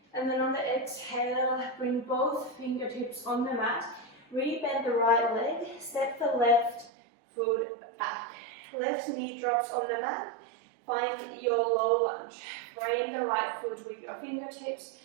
And then on the exhale, bring both fingertips on the mat. Rebend the right leg, step the left foot back. Left knee drops on the mat. Find your low lunge. Frame the right foot with your fingertips.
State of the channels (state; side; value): drops out; left; at 6.9 s